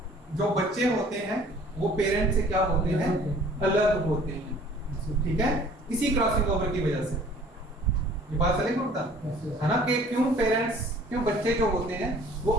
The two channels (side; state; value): both; normal; correlation 0.52